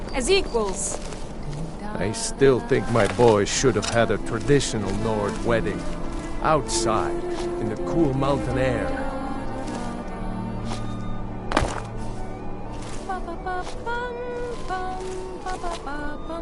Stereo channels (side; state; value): both; identical; correlation 1.00